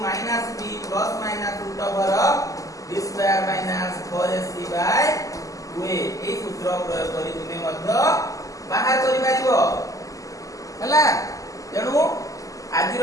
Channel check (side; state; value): right; late; 0.16 ms